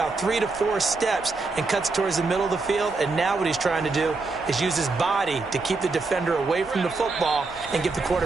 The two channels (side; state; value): left; quieter; 3.8 dB